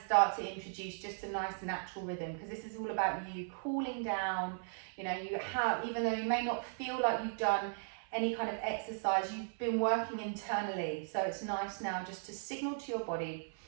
start to introduce just a nice natural rhythm, because this is all about you cooling down. You know, even though you may not feel like you've done any kind of exercise, you've been working internally. So it's nice now just to signal to your body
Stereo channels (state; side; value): silent; left; 53 dB below the other